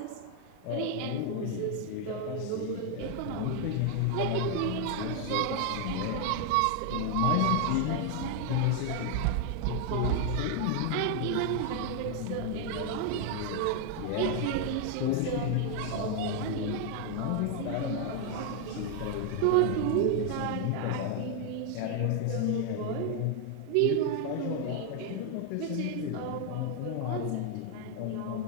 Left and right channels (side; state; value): both; different; correlation 0.00